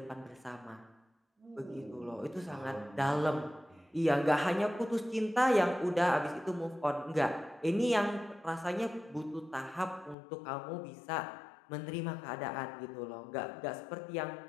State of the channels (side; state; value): right; drops out; at 10.2 s